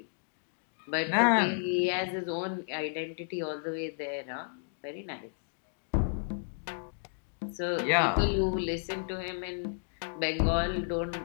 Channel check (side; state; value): right; silent; digital silence